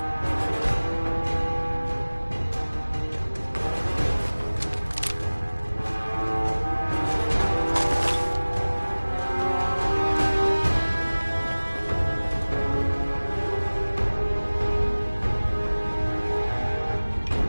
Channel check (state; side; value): inverted; both; correlation -1.00